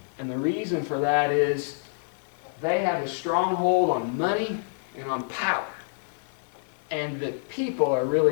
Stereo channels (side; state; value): right; silent; digital silence